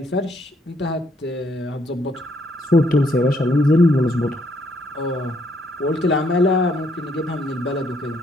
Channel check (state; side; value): normal; both; correlation 0.70